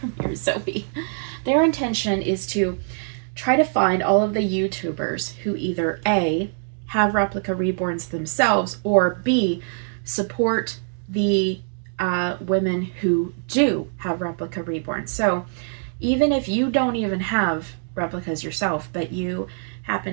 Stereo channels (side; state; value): left; silent; digital silence